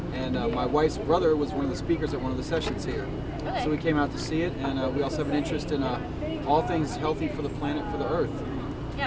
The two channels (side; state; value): both; identical; correlation 1.00